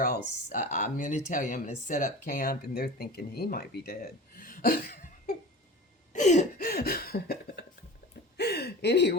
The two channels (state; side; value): normal; both; correlation 0.36